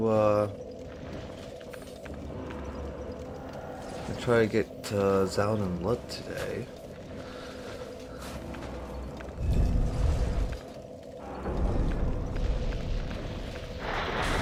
get Zallen and Blood today.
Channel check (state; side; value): identical; both; correlation 1.00